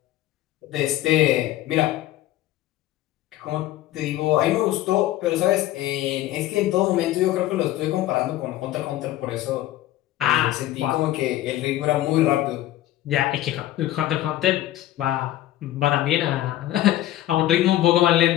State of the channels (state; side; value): quieter; right; 14.3 dB